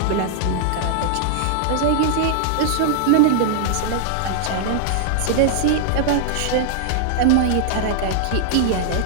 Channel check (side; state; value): both; different; correlation -0.01